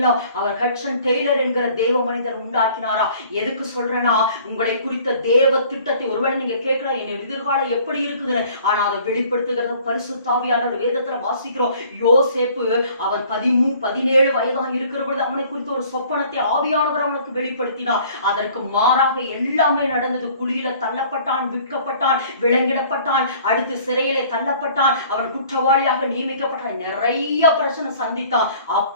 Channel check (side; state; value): both; inverted; correlation -0.53